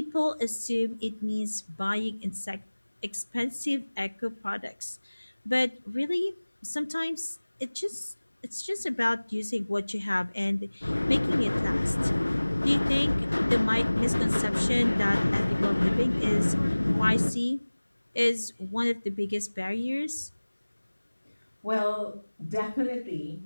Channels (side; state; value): both; inverted; correlation -1.00